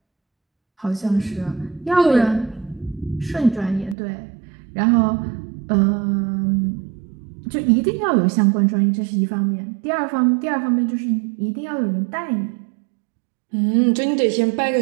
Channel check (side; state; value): left; drops out; at 4.0 s